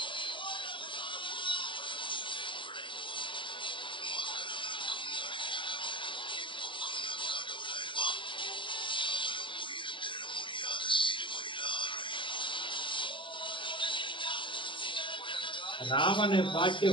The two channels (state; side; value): late; right; 0.24 ms